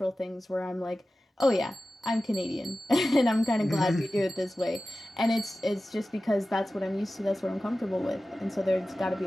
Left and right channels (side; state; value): both; normal; correlation 0.95